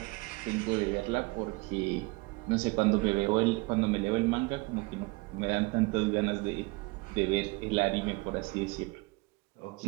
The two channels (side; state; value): left; quieter; 26.0 dB